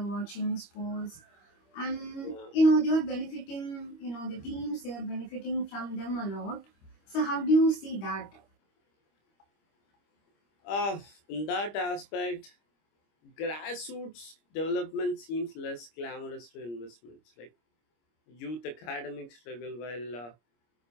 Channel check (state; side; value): late; right; 25 ms